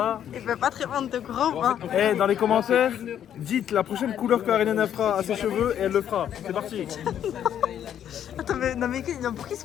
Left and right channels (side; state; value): right; quieter; 9.9 dB